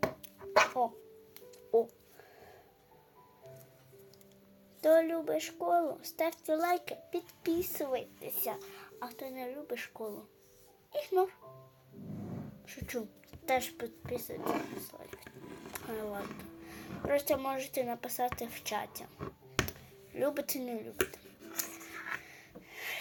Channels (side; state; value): both; identical; correlation 1.00